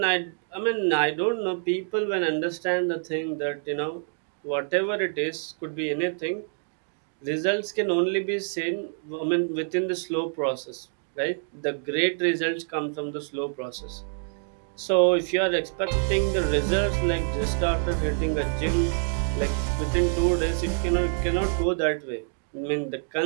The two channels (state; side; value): silent; left; 60 dB below the other